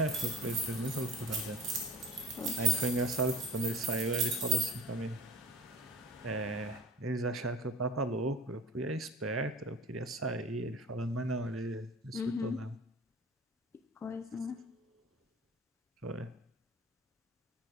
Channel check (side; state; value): both; normal; correlation 0.40